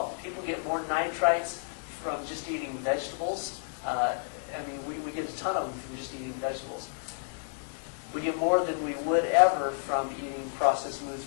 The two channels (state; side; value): silent; right; digital silence